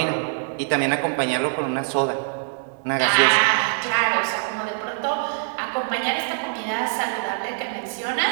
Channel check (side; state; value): left; silent; digital silence